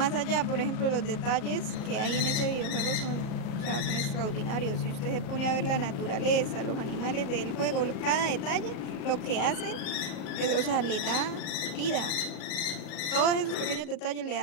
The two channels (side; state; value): right; late; 38 ms